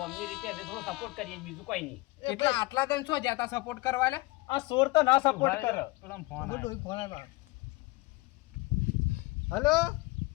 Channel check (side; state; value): right; quieter; 22.2 dB